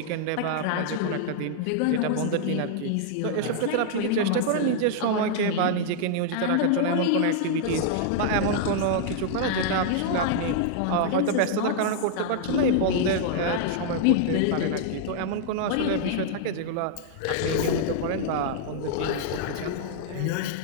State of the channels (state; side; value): different; both; correlation -0.01